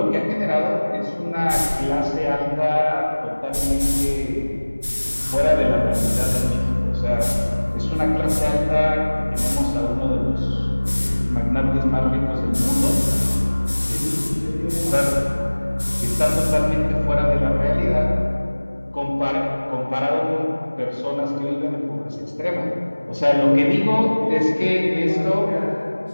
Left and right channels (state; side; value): inverted; both; correlation -1.00